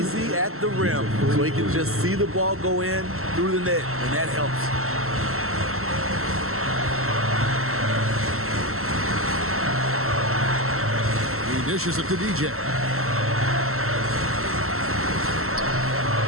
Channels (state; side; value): late; left; 0.63 ms